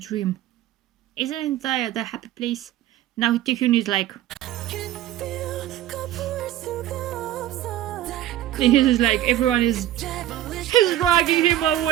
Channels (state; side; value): quieter; left; 13.2 dB